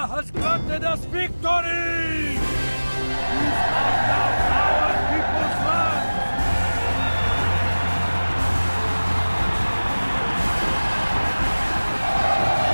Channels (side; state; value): both; inverted; correlation -1.00